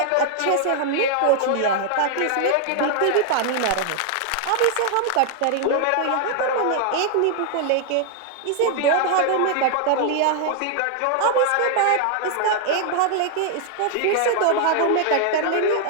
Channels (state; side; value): different; both; correlation 0.00